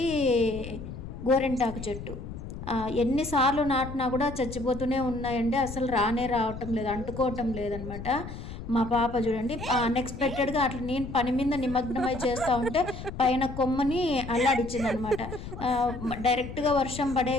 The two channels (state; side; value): noise; left; rumble, 10 dB below the sound